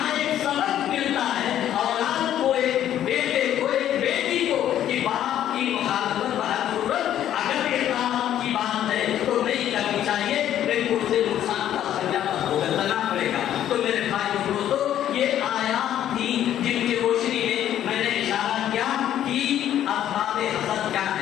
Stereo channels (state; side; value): quieter; right; 11.3 dB